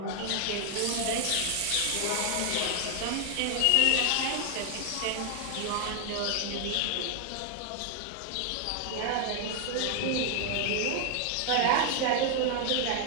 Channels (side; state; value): both; different; correlation 0.00